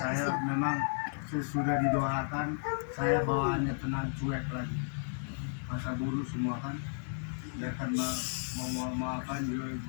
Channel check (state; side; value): silent; right; digital silence